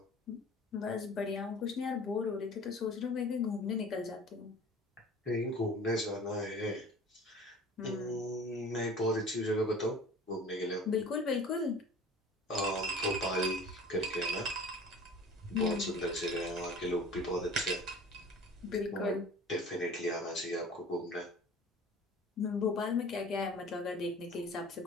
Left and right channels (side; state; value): both; normal; correlation 0.44